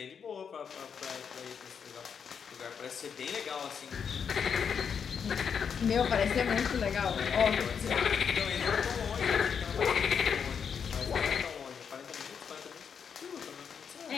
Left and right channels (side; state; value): right; quieter; 6.9 dB